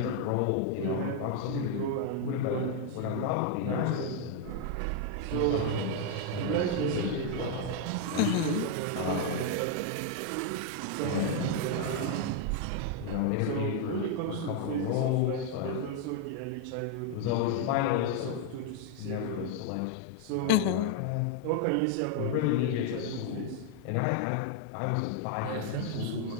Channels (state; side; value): different; both; correlation 0.00